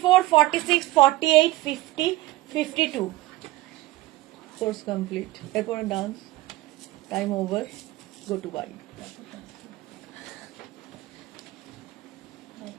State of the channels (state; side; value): quieter; left; 18.1 dB